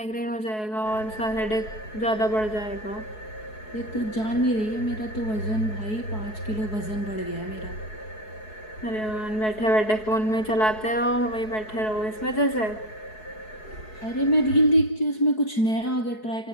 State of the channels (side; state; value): right; late; 4.7 ms